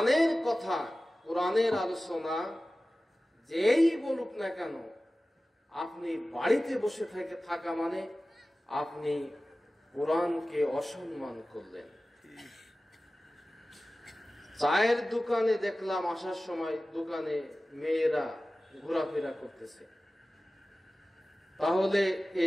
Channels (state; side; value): normal; both; correlation 0.96